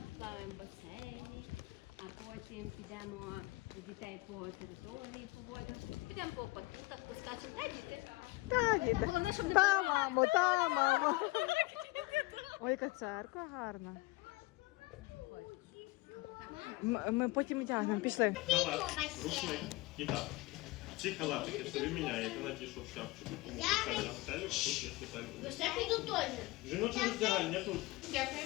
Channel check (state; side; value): quieter; right; 21.4 dB